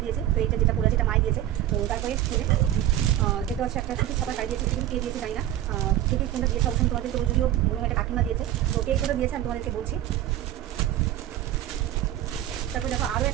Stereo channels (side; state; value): left; quieter; 12.6 dB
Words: দিয়েছে, তো এইটা যেটা পরে আছে এটা মাই দিয়েছে। তো তারপরে দেখতে হচ্ছে একটা সুতির ছাপা শাড়ি দিয়েছে, কিন্তু কে দিয়েছে জানি না, কে কোনটা দিয়েছে অবশ্যই তোমাদের, তো যদিও মনে হয় একটা কাকিমা দিয়েছে, তো কে কোনটা দিয়েছে আমি তোমাদেরকে বলছি। তারপর দেখো আরও